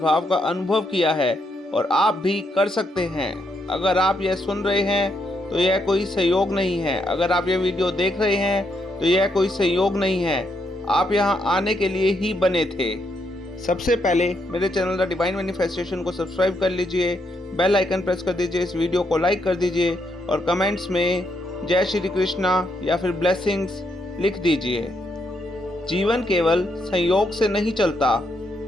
का अनुभव किया है और आप भी कर सकते हैं। अगर आप यह सुन रहे हैं तो यह कोई संयोग नहीं है। अगर आप यह वीडियो देख रहे हैं तो यह कोई संयोग नहीं है। आप यहाँ आने के लिए ही बने थे। सबसे पहले मेरे चैनल द डिवाइन मैनिफेस्टेशन को सब्सक्राइब कर लीजिए, बेल आइकन प्रेस कर दीजिए, इस वीडियो को लाइक कर दीजिए और कमेंट्स में जय श्री कृष्णा या फिर ब्लेसिंग्स लिख दीजिए। जीवन केवल संयोग से नहीं चलता,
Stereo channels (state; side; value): normal; both; correlation 0.77